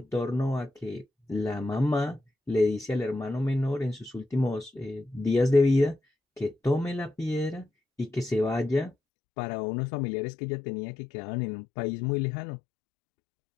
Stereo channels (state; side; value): drops out; right; at 8.9 s